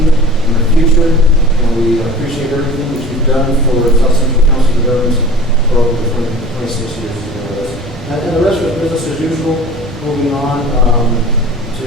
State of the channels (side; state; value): both; normal; correlation 0.40